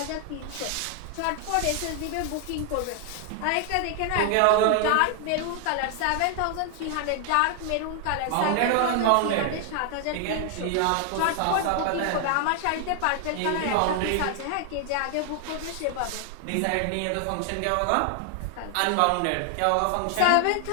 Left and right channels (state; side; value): different; both; correlation 0.00